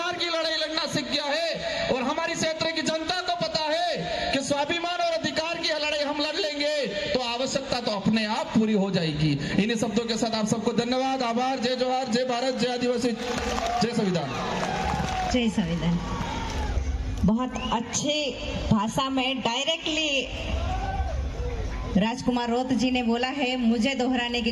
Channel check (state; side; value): identical; both; correlation 1.00